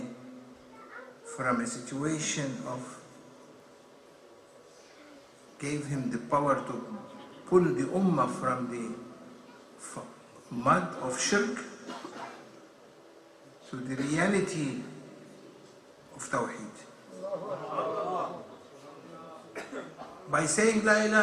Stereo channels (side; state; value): both; identical; correlation 1.00